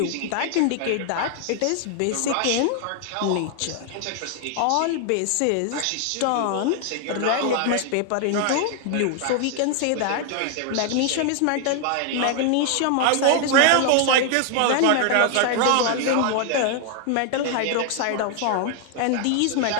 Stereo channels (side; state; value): both; different; correlation 0.00